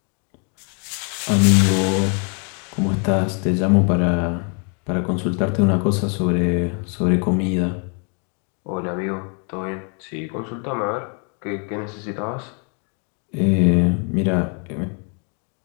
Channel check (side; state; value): right; quieter; 38.6 dB